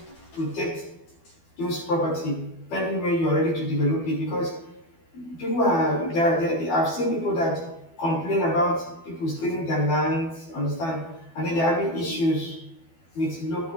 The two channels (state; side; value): late; right; 12 ms